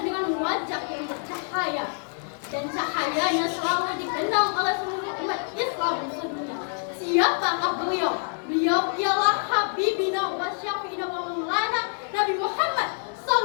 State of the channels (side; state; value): right; silent; 56 dB below the other